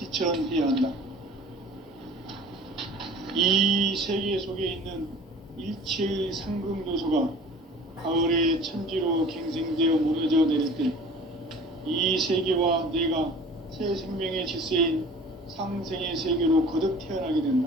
한다. 이 세계 속에 있는 일체의 상승요소가 가을의 천지로 갱생되어 무너져 내릴 때 이 세계와 내가 새 생명의 질서인 상생의 세계로 거듭 태어나게 된다.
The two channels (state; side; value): normal; both; correlation 0.44